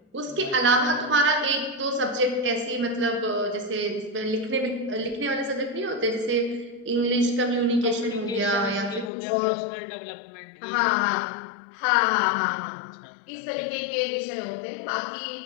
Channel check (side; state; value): right; drops out; at 9.1 s